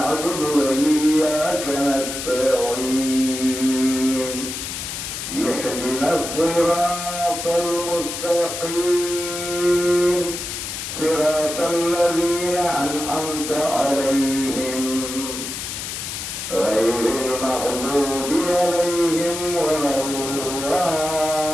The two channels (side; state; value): left; noise; hiss, 6 dB below the sound